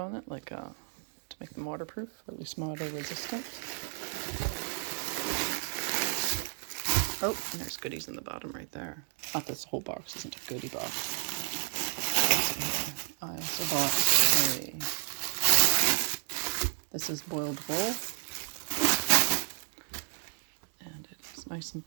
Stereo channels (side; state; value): left; silent; 56 dB below the other